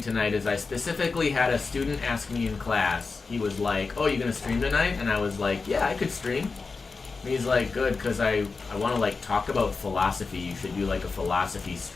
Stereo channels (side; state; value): right; quieter; 4.4 dB